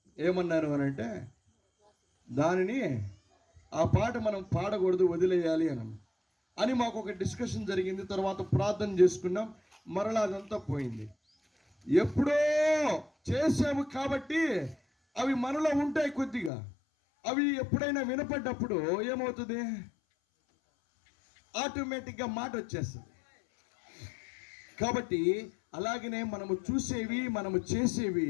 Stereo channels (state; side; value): drops out; right; at 16.5 s